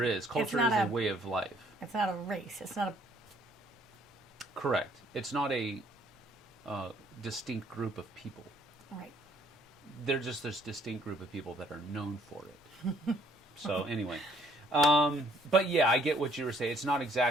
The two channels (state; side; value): normal; both; correlation 0.62